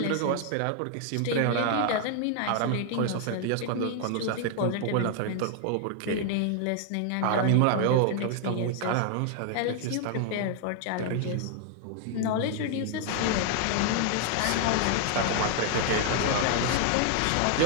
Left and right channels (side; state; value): both; different; correlation 0.00